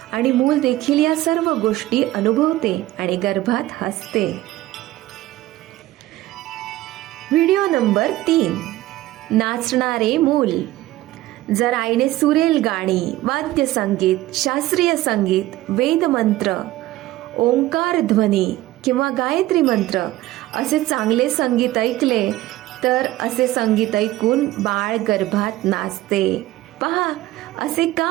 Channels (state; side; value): quieter; left; 16.3 dB